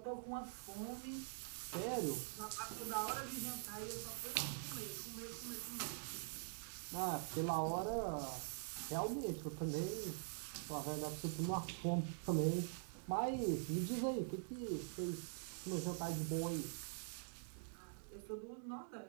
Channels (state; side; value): silent; left; digital silence